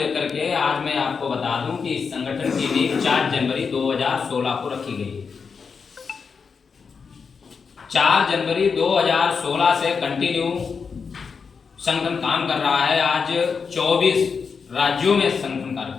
के आज मैं आपको बता दूं कि इस संगठन की नींव 4 जनवरी 2016 को रखी गई है। 4 जनवरी 2016 से कंटिन्यू संगठन काम कर रहा है। आज 24 राज्यों में संगठन कार्य कर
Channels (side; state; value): right; quieter; 5.6 dB